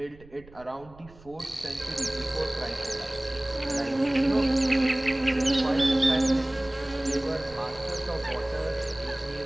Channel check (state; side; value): noise; right; rumble, 24 dB below the sound